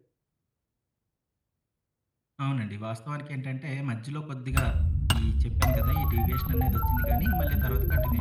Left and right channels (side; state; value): both; identical; correlation 1.00